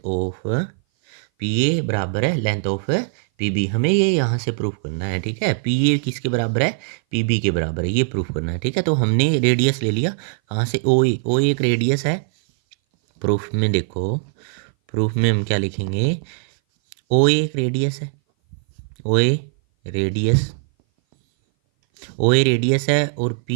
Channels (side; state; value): left; silent; 59 dB below the other